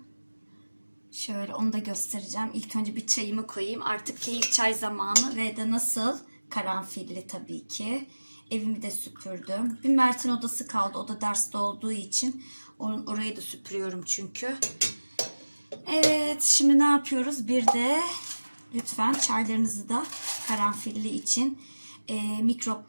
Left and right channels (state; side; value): inverted; both; correlation -1.00